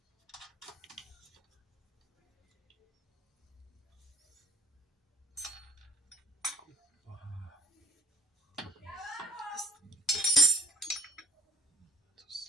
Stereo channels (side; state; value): both; normal; correlation 0.60